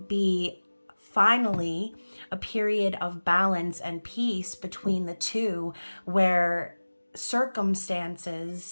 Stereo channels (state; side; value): inverted; both; correlation -1.00